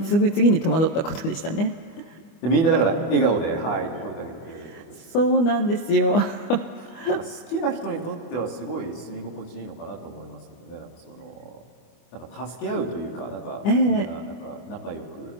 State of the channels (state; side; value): late; right; 25 ms